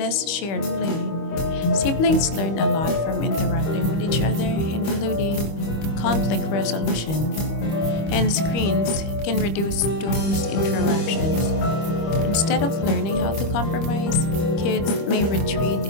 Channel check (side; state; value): right; late; 25 ms